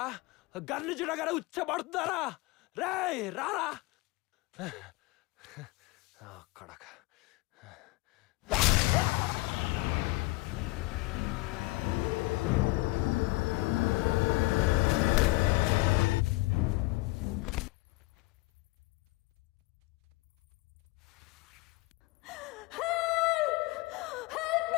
గన్ను చూడగానే ఉచ్చబడుతున్నారా రేయ్ రారా కడక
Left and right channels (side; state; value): right; quieter; 22.5 dB